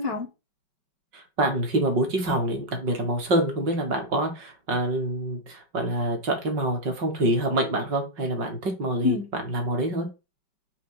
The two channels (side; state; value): left; late; 5.5 ms